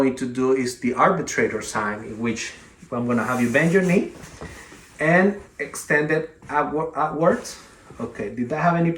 to do is the arbitrator sign, in which I'm gonna have you bend your knee and extend it outwards. Okay, did that have any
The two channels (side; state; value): both; identical; correlation 1.00